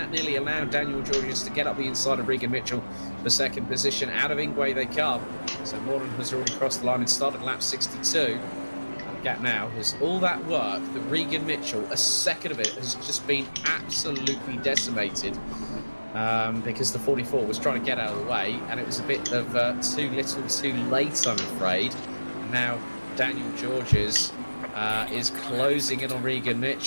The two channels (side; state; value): both; inverted; correlation -1.00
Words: nearly allowed Daniel Georges to get up the inside of Regan Mitchell for second position. Out of Ingwe they come. So Moren has already crossed the line and started lap 62. And the gap now has all that work that Regan Mitchell, a second of it, has just been absolutely decimated. Because the 44 was trying to get out of the way, and it was a bit of too little too late, I'm afraid. And now Daniel Georges is closing in on Regan